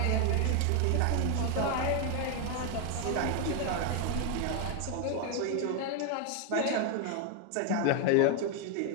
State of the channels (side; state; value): both; different; correlation 0.01